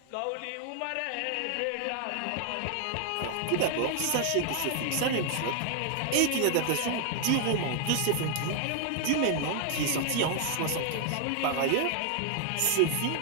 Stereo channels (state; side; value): different; both; correlation 0.00